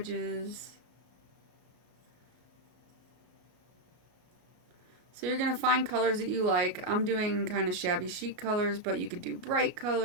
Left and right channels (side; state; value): left; late; 33 ms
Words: So you're going to find colors that you like. I'm doing kind of shabby chic colors, but you could do bright